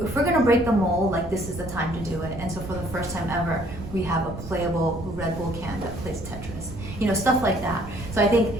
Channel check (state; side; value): noise; right; rumble, 11 dB below the sound